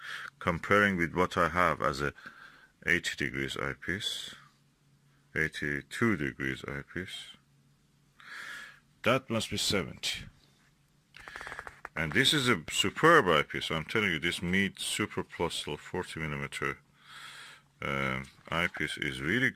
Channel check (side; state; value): both; identical; correlation 1.00